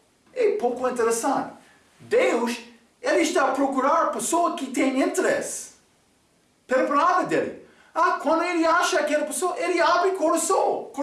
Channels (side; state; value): both; identical; correlation 1.00